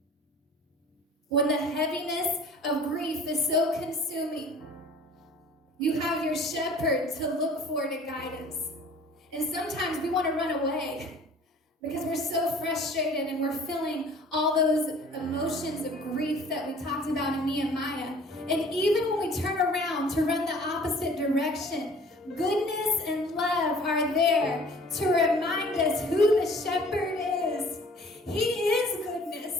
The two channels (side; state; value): both; normal; correlation 0.49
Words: When the heaviness of grief is so consuming, you have your shepherd to look for to guide us. And sometimes we want to run away because we're so frustrated and we're feeling all those emotions of grief that we talked about in Nehemiah. And even when we turn around to run the opposite direction, goodness and love are there to remind us who the shepherd is. He is